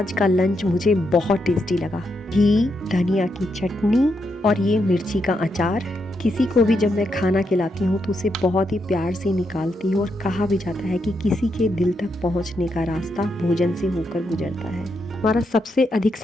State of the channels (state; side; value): normal; both; correlation 0.81